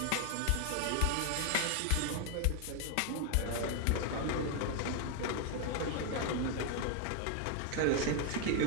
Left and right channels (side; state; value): both; different; correlation 0.00